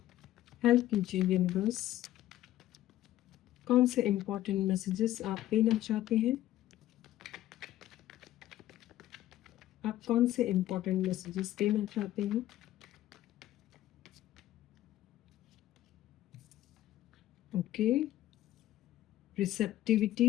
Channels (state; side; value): quieter; right; 13.9 dB